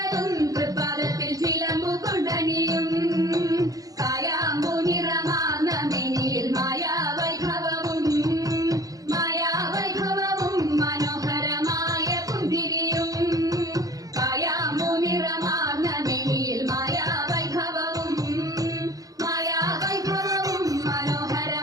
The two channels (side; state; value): left; late; 0.17 ms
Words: തൃപ്പാദത്തിൽ ചിലമ്പു കൊണ്ടണിയും കായാമ്പു നിറമാർന്ന മെനിയിൽ മായാവൈഭവവും മനോഹരമായ പുന്തിരിയും കായാമ്പു നിറമാർന്ന മെനിയിൽ മായാവൈഭവവും